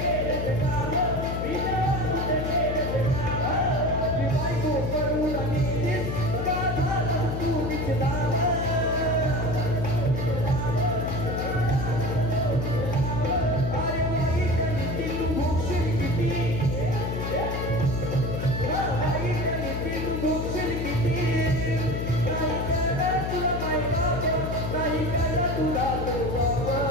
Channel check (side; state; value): left; noise; hum, 3 dB below the sound